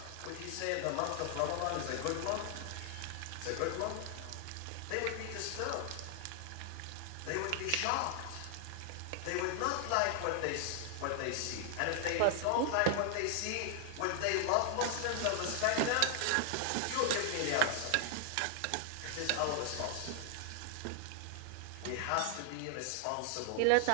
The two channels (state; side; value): different; both; correlation 0.00